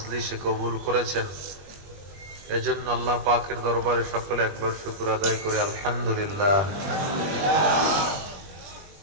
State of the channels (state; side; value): late; left; 21 ms